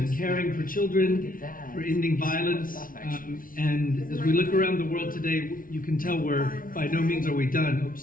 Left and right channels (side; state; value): right; late; 0.40 ms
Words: caring for children, for ending violence. And as we look around the world today, you can tell by no means are we done. Oops,